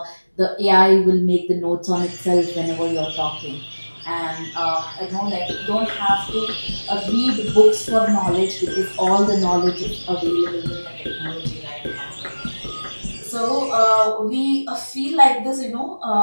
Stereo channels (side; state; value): both; inverted; correlation -1.00